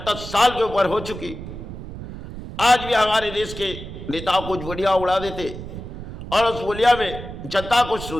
साल के ऊपर हो चुकी। आज भी हमारे देश के नेताओं कुछ बोलियां उड़ा देते और उस बोलिया में जनता कुछ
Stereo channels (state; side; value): noise; right; rumble, 10 dB below the sound